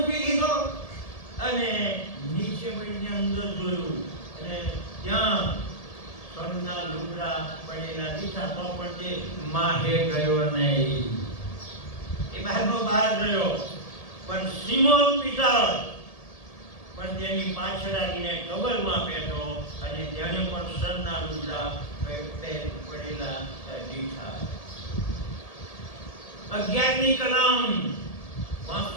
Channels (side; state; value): right; late; 1.8 ms